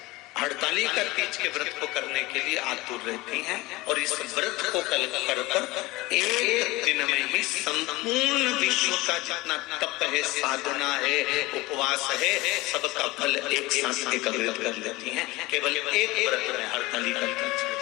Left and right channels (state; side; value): quieter; right; 20.7 dB